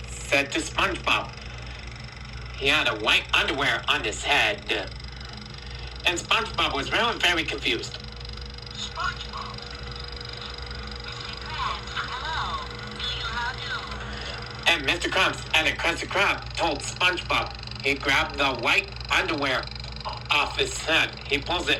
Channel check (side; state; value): both; identical; correlation 1.00